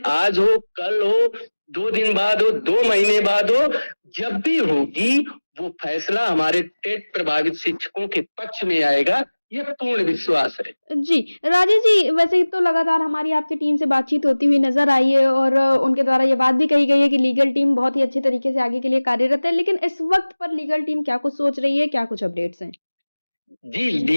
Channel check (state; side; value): inverted; both; correlation -1.00